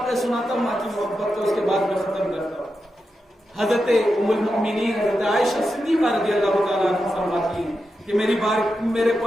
سناتا ہوں ماں کی محبت کو، اس کے بعد میں ختم کرتا ہوں. حضرت ام المؤمنین حضرت عائشہ صدیقہ رضی اللہ تعالیٰ عنہا فرماتی ہیں کہ میرے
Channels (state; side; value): normal; both; correlation 0.88